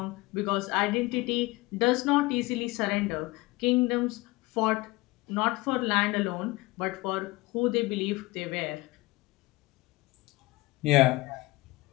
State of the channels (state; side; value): quieter; right; 21.3 dB